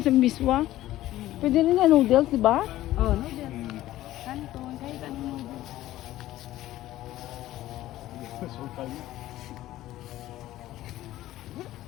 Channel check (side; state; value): right; quieter; 14.9 dB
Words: sa miswa. Pwede rin na noodles, di ba? Oh, noodles. Kanton, kahit anong noodles.